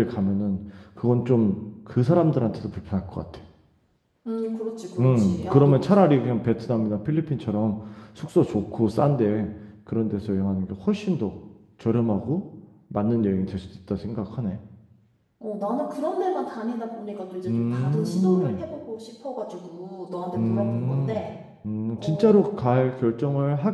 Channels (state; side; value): identical; both; correlation 1.00